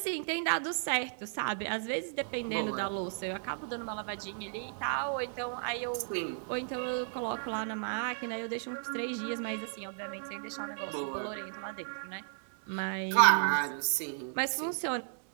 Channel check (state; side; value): silent; left; digital silence